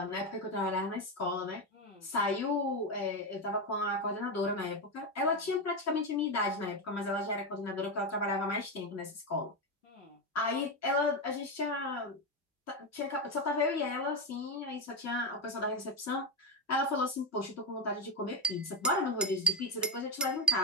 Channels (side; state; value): both; normal; correlation 0.11